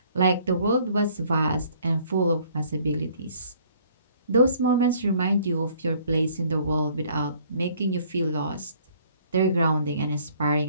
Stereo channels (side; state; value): both; inverted; correlation -0.59